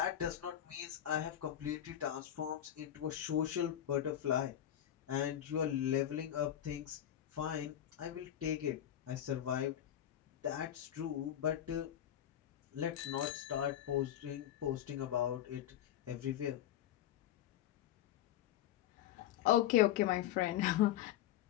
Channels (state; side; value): quieter; right; 11.3 dB